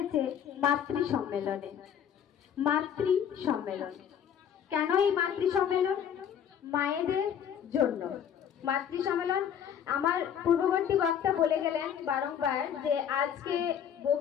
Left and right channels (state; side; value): quieter; right; 8.7 dB